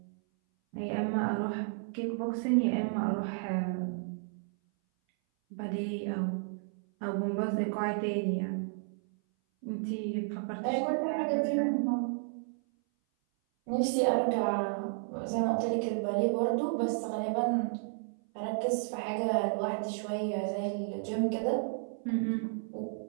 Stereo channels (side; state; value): left; silent; 56 dB below the other